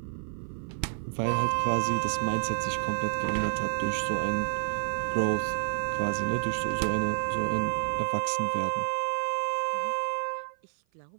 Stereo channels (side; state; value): left; silent; 56 dB below the other